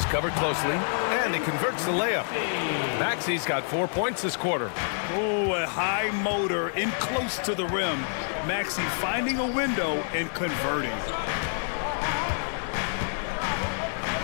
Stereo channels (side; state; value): right; silent; 60 dB below the other